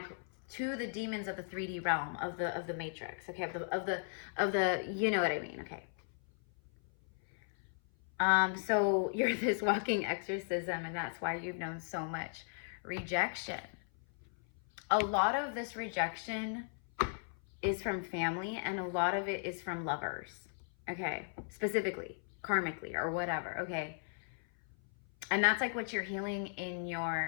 to the demons of the 3D realm of the matrix. Okay. Of the, you know what I mean? Okay. So you're this walking exorcism and that's why you've known so much rejection. A lot of this rejection is from family and a lot of it is from lovers, okay? Specifically, karmically or whatever, okay? And that's like what you're healing in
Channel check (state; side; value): silent; right; 53 dB below the other